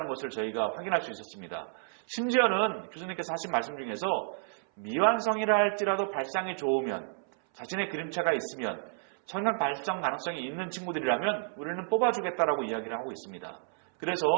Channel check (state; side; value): silent; left; 57 dB below the other